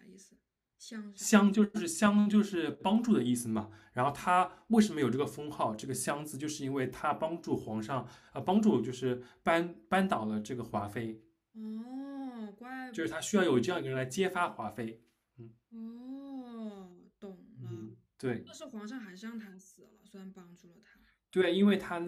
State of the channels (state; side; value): identical; both; correlation 1.00